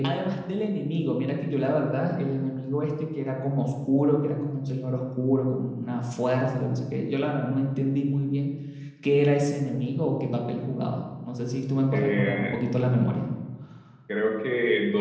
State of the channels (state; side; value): identical; both; correlation 1.00